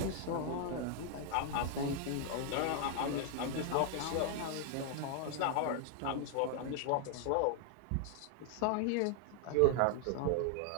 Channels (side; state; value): both; different; correlation 0.00